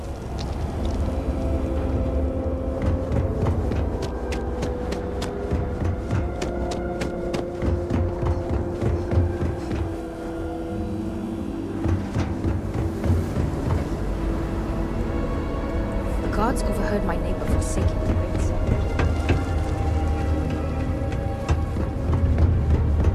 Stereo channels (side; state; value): both; identical; correlation 1.00